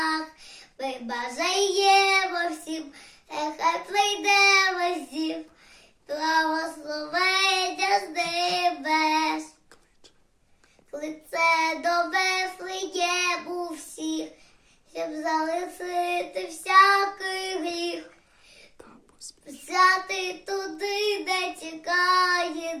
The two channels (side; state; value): both; identical; correlation 1.00